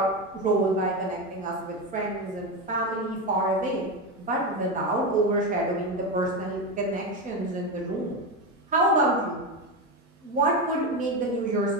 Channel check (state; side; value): normal; both; correlation 0.15